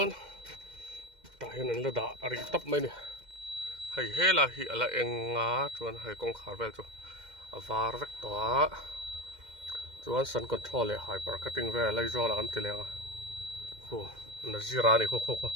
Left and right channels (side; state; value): left; late; 2.1 ms